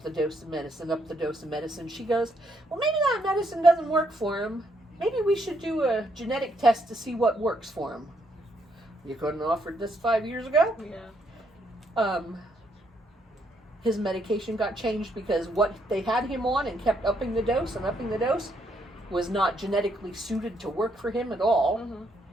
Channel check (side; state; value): both; normal; correlation 0.73